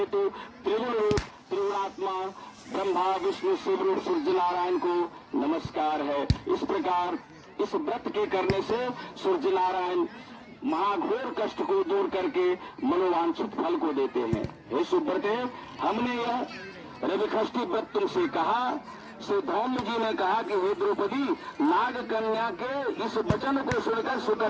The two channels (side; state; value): both; identical; correlation 1.00